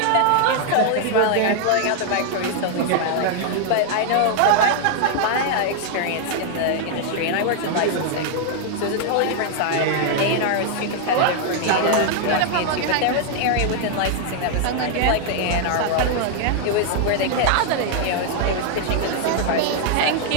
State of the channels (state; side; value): different; both; correlation 0.00